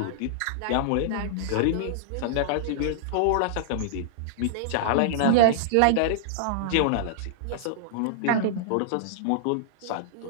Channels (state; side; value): different; both; correlation -0.01